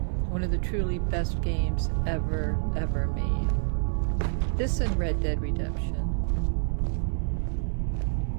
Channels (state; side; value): silent; left; digital silence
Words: of the truly best games ever made. This and Red Dead Redemption.